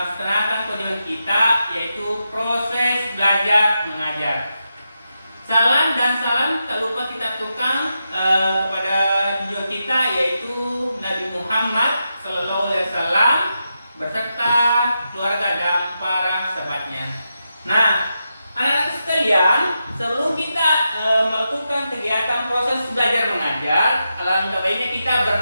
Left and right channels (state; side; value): inverted; both; correlation -0.87